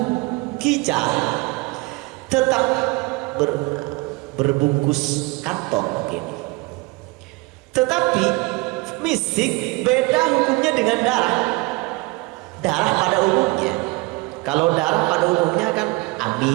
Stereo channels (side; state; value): left; quieter; 24.4 dB